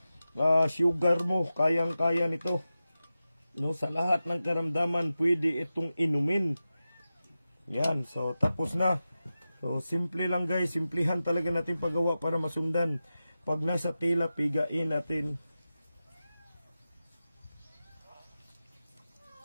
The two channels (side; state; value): both; inverted; correlation -0.93